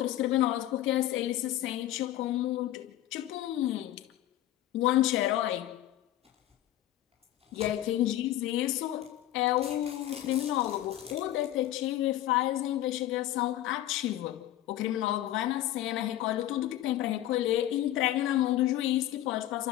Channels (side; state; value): right; quieter; 13.7 dB